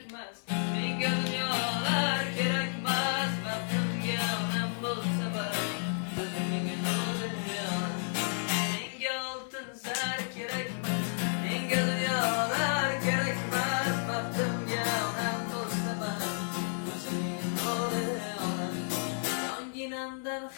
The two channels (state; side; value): silent; right; 57 dB below the other